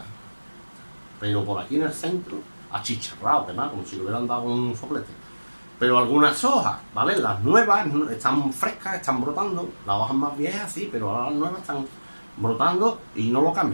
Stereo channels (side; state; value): both; inverted; correlation -1.00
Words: pero por aquí en el centro, achicharrado, quemado, como si le hubieran dado un soplete. Pero algunas hojas, ¿vale? Las nuevas están frescas, están brotando, las hojas más viejas sí, pero ahora las nuevas están brotando y no lo